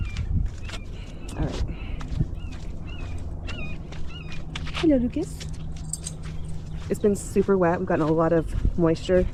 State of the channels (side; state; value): both; identical; correlation 1.00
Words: All right. Hello, Lucas. It's been super wet. We've gotten a lot of moisture,